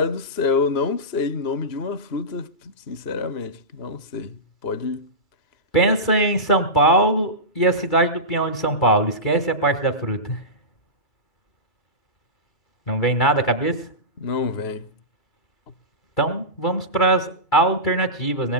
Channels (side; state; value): right; late; 2.3 ms